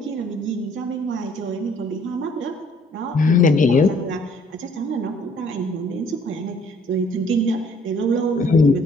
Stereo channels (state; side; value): normal; both; correlation 0.60